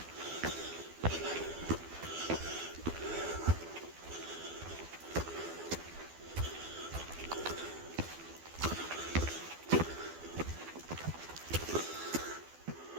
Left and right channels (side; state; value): left; late; 12 ms